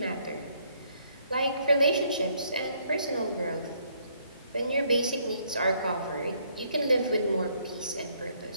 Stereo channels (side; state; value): both; inverted; correlation -0.68